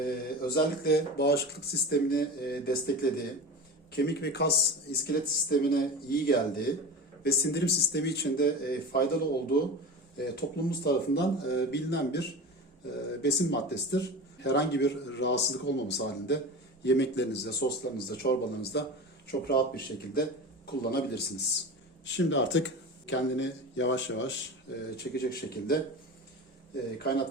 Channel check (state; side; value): normal; both; correlation 0.30